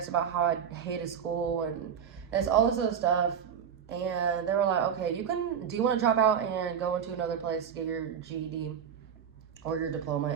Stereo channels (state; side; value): quieter; left; 7.8 dB